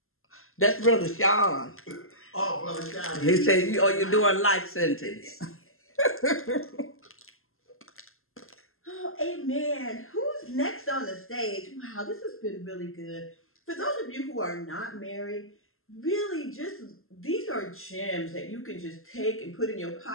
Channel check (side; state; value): right; late; 0.61 ms